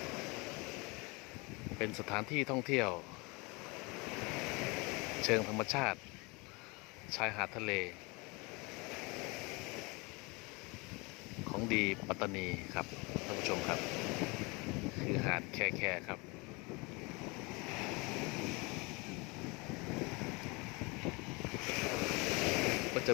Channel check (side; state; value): right; quieter; 27.1 dB